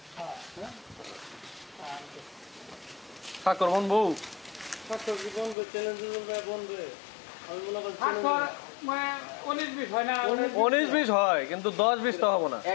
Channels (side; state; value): right; drops out; at 5.6 s